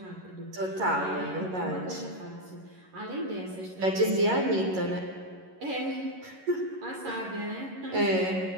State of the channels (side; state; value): left; late; 11 ms